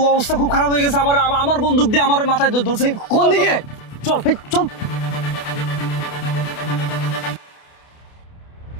অবস্থা খুব খারাপ হয়ে গেছে, আমার বন্দুক দিয়ে আমার মাথায় ধরছে। কোন দিকে? চল এই, চল।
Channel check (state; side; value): late; right; 28 ms